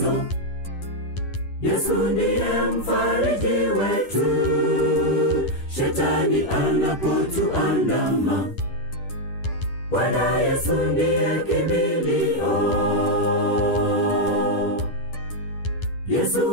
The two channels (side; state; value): right; late; 10 ms